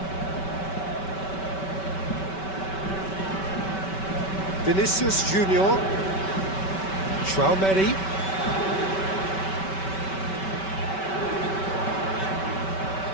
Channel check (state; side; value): late; right; 5.2 ms